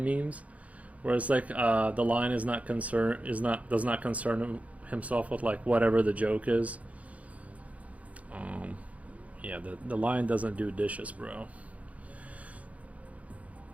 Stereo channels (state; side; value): late; left; 0.067 ms